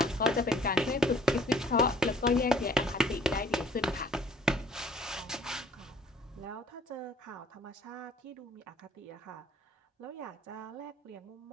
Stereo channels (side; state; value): both; normal; correlation 0.55